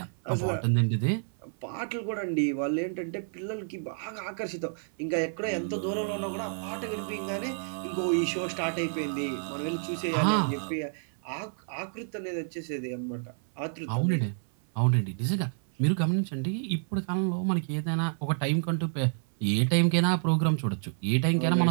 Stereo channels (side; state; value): left; silent; 58 dB below the other